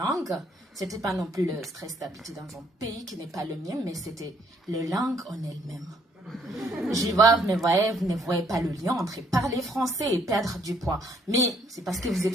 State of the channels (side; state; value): both; normal; correlation 0.67